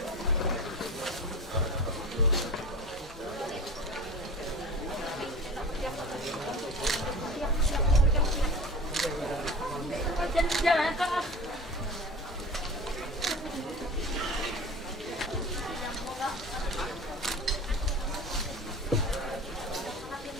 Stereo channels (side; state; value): both; normal; correlation 0.35